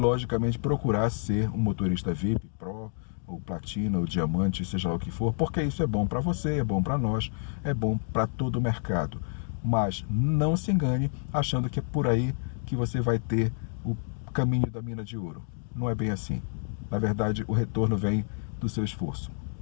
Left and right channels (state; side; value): silent; right; 59 dB below the other